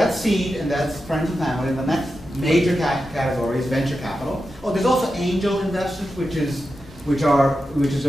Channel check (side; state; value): both; normal; correlation 0.90